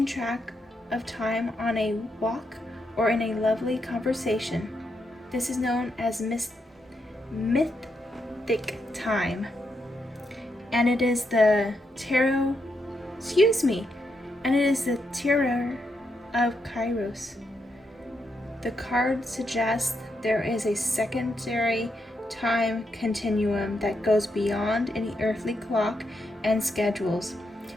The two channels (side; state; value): both; normal; correlation 0.81